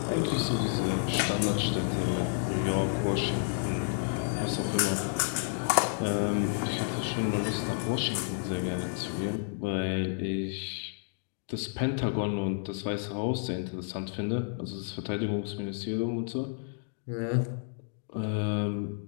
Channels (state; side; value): silent; right; digital silence